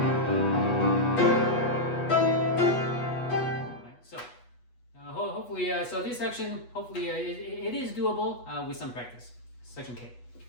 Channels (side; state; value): right; late; 8.2 ms